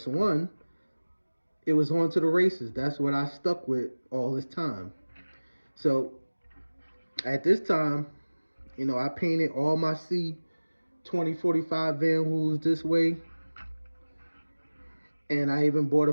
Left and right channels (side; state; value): both; inverted; correlation -1.00